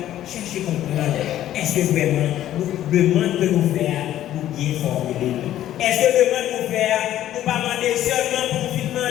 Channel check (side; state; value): right; quieter; 12.5 dB